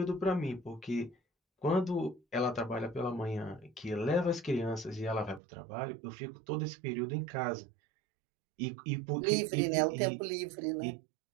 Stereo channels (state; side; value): drops out; left; at 5.4 s